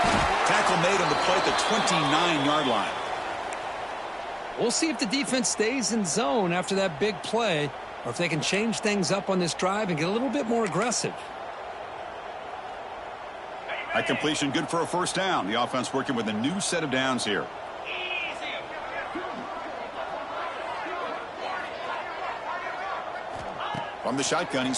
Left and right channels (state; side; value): identical; both; correlation 1.00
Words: Tackle made on the play at the 29-yard line. We'll see if the defense stays in zone after that big play, or if they can change things up on this drive and get a little bit more aggressive. That completion good for a 1st down. The offense working with a new set of downs here. From the shotgun,